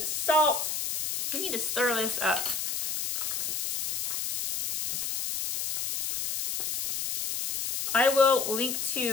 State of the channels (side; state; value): left; noise; hiss, 3 dB below the sound